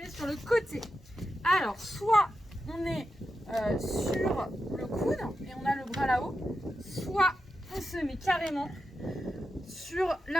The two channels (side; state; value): both; normal; correlation 0.89